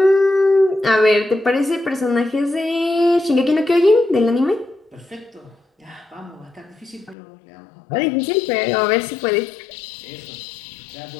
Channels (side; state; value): right; drops out; at 7.2 s